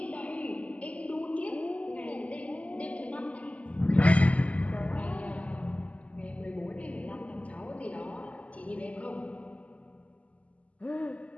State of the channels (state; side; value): late; right; 0.067 ms